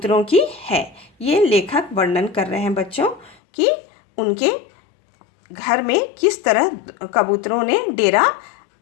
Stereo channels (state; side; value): drops out; right; at 3.4 s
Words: की है। ये लेखक वर्णन कर रहे हैं बच्चों कि उनके घर में किस तरह कबूतरों ने डेरा